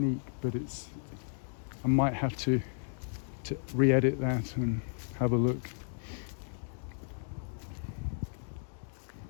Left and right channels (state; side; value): silent; right; digital silence